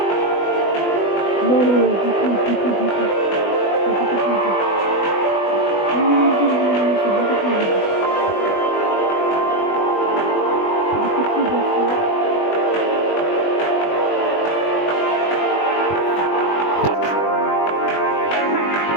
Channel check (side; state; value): right; late; 20 ms